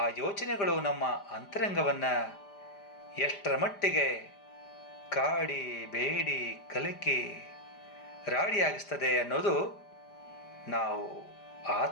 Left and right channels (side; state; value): right; late; 5.0 ms